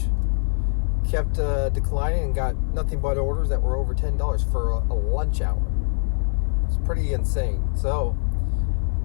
Kept declining and got nothing but orders that were over $10 for a lunch hour. It's pretty insane. So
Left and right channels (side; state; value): right; silent; 63 dB below the other